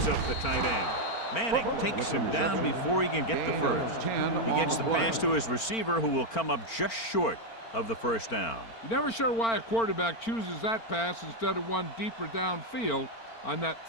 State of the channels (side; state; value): right; late; 4.4 ms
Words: up the tight end. Manning takes him down before he can get the first. He gets the pass to his receiver, who will come up just short of the first down. You're never sure why a quarterback chooses that pass instead of one deeper downfield on that